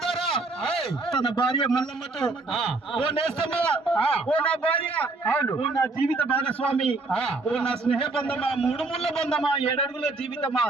ద్వారా తన భార్య మల్లమ్మతో ఓ నేస్తమ్మా, ఓ నా భార్య, ఓ నా జీవిత భాగస్వామి, ఓ నా స్నేహ బంధమా, మూడు ముళ్ళ బంధమా, 7 అడుగుల జీవితమా,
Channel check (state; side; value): quieter; left; 3.4 dB